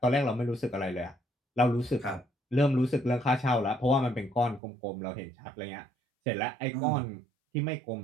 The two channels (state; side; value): drops out; left; at 4.6 s